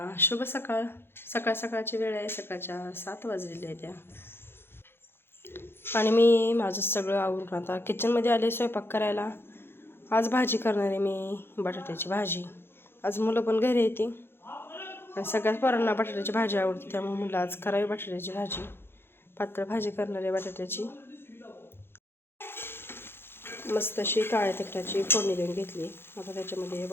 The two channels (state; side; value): late; right; 0.11 ms